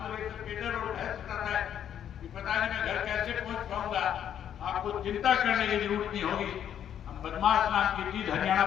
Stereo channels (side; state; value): right; quieter; 9.6 dB